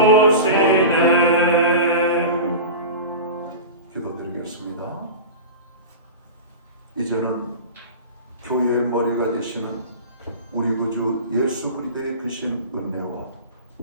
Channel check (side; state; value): both; inverted; correlation -0.31